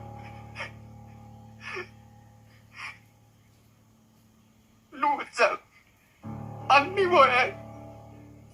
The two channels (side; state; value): both; identical; correlation 1.00